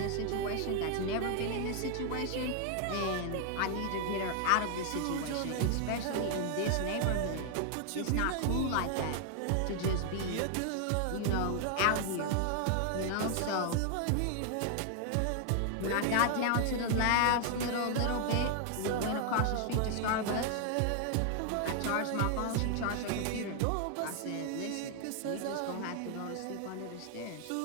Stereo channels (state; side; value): different; both; correlation 0.00